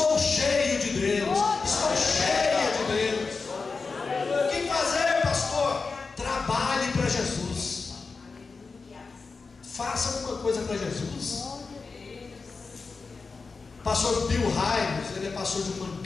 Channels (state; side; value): quieter; right; 4.4 dB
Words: cheio de Deus, estou cheio de Deus. O que fazer, pastor? Trabalhe para Jesus, faça alguma coisa para Jesus. Pastor Bill Hybels, ele é pastor de uma